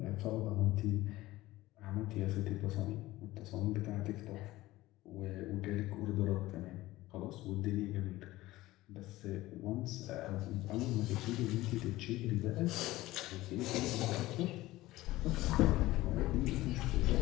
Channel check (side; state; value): right; quieter; 17.5 dB